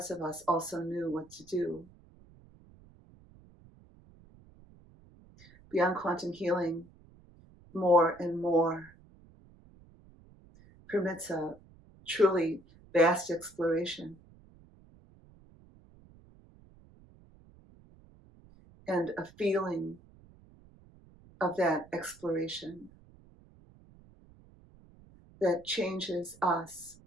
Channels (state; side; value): noise; right; rumble, 25 dB below the sound